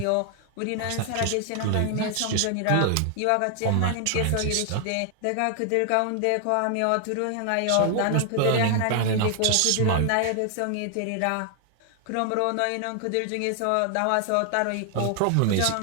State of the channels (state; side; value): different; both; correlation 0.00